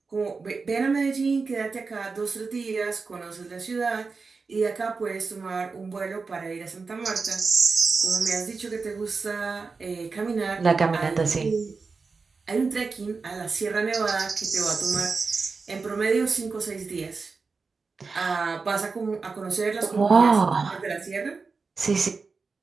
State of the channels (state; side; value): quieter; left; 4.5 dB